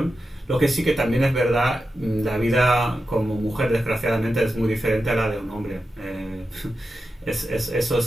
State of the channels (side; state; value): both; normal; correlation 0.90